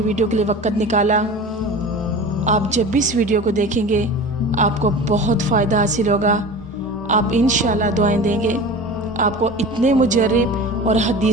वीडियो के लिए वक़्त निकाला। आप जब भी इस वीडियो को देखेंगे आपको बहुत फ़ायदा हासिल होगा। आप इंशाल्लाह दुआएं देंगे। आपको इतने मुजर्रिब और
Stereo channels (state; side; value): normal; both; correlation 0.35